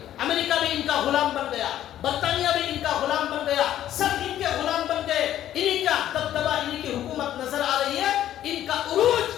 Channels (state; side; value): quieter; right; 11.9 dB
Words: امریکہ بھی ان کا غلام بن گیا، برطانیہ بھی ان کا غلام بن گیا، سب ان کے غلام بن گئے. انہی کا دبدبہ، انہی کی حکومت نظر آ رہی ہے. ان کا عروج،